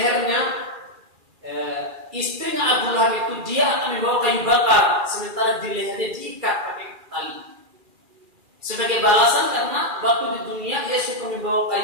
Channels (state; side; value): late; left; 2.4 ms